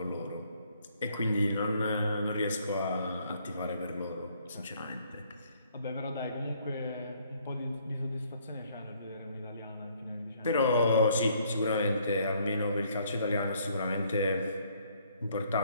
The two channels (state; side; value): inverted; both; correlation -0.66